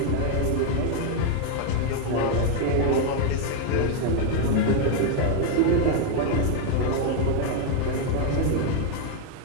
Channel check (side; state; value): both; different; correlation 0.01